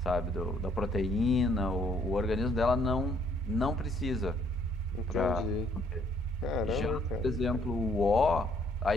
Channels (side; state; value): both; normal; correlation 0.66